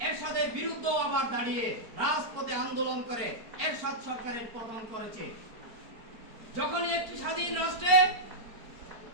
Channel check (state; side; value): late; left; 4.4 ms